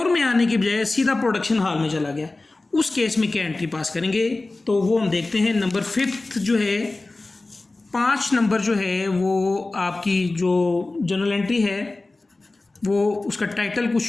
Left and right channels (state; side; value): quieter; right; 3.2 dB